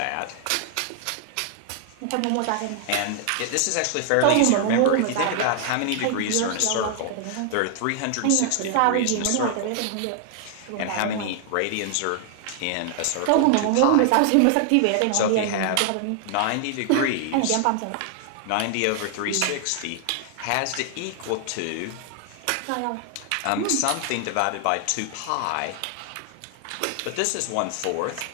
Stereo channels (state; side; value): different; both; correlation 0.00